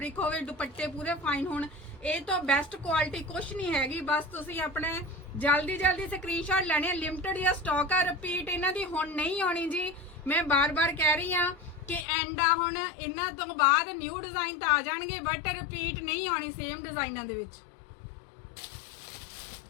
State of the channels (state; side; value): drops out; right; at 12.1 s